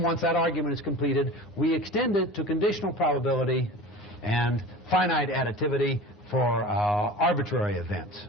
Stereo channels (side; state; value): both; normal; correlation 0.36